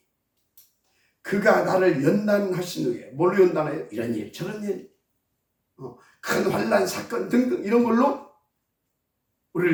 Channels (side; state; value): both; identical; correlation 1.00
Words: 그가 나를 연단하신 후에 뭘로 연단해요? 이런 일 저런 일 큰 환난 사건 등등 이런 걸로